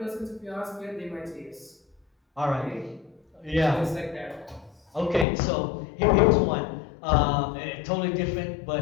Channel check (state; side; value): drops out; right; at 5.2 s